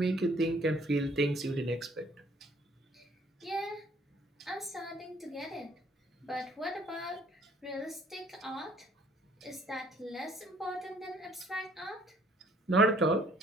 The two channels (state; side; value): normal; both; correlation 0.61